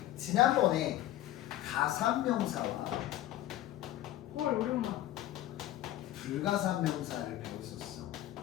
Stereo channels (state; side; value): quieter; right; 14.1 dB